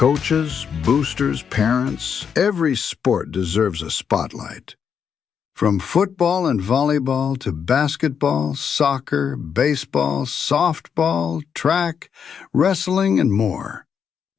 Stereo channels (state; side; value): quieter; right; 7.2 dB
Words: boosters, parents, every sport deserves a spotlight. From football and volleyball to basketball, soccer, baseball, softball, track, wrestling, and more.